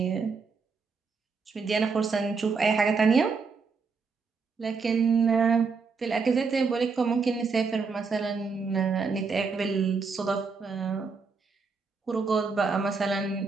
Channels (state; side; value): quieter; left; 4.9 dB